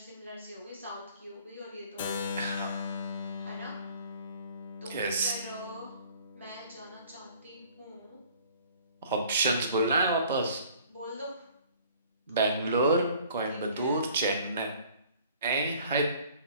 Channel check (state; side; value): inverted; both; correlation -0.53